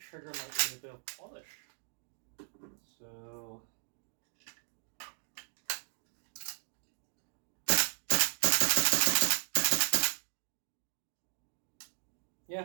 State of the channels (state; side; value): silent; left; digital silence